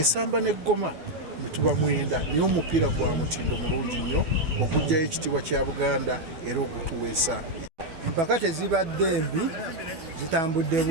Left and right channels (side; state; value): left; late; 12 ms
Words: n'eggoma mituba 9, naye omupiira gwa mutindo mulungi nnyo okugjayo ekitiibwa kya Buganda era okutuweesa. Empaka tezibadde mbi, zitambudde